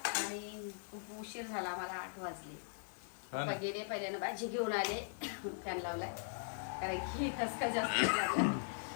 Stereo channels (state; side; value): silent; right; digital silence